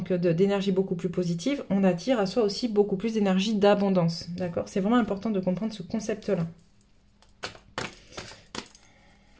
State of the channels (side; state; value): both; identical; correlation 1.00